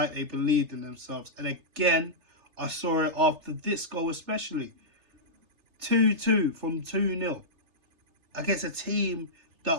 they believed in themselves. And again, I saw it after this goal especially. 2-2 from 2-0 against a team that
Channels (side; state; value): left; late; 3.3 ms